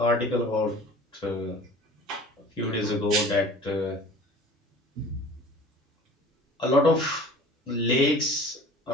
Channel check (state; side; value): normal; both; correlation 0.44